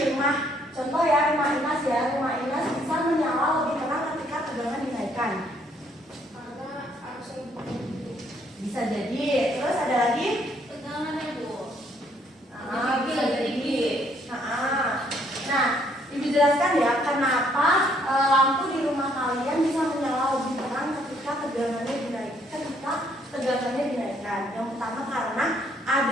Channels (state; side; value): normal; both; correlation 0.67